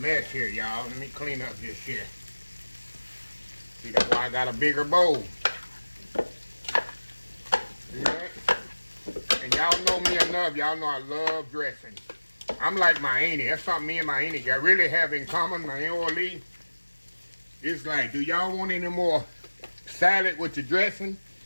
here, y'all. Let me clean up this here. See, that's why I got a bigger bowl. See that? And y'all know me enough. Y'all know I love dressing. I'm like my auntie. That's something me and my auntie got really have in common. My Aunt Lee. It's like, do y'all want any more salad with your dressing?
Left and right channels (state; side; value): inverted; both; correlation -1.00